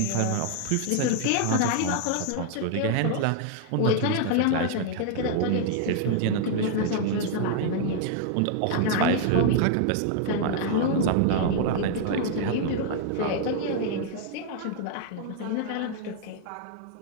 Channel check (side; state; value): both; different; correlation -0.01